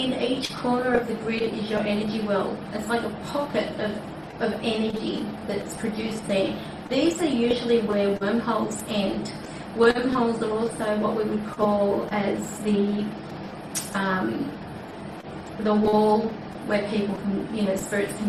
each corner of the grid is your energy well. It's like a pocket of energy that's produced there. These are usually where wormholes end. Wormholes are also what we would call as the wall where people can, spirits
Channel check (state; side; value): identical; both; correlation 1.00